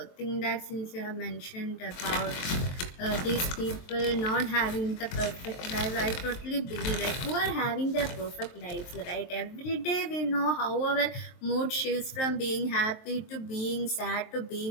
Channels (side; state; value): right; late; 23 ms